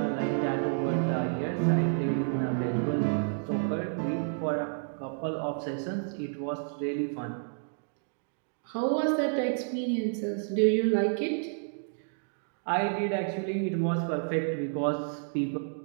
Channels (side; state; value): left; silent; digital silence